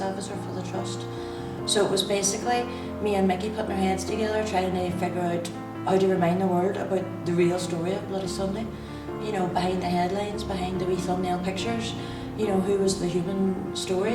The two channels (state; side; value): identical; both; correlation 1.00